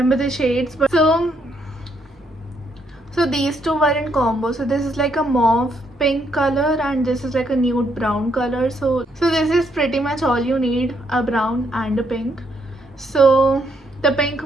the shades, but so these 2 were in combo. So this is like a mauve pink color and this is like a nude brown color. So this is pretty much all you need, a brown and a pink. So the pink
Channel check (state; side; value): normal; both; correlation 0.74